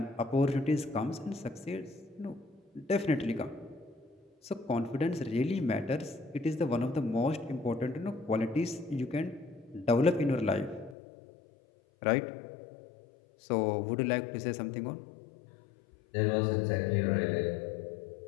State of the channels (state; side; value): drops out; right; at 11.0 s